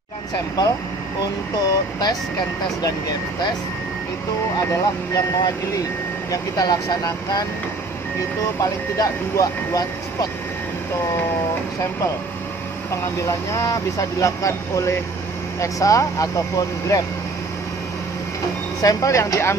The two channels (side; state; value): left; quieter; 3.3 dB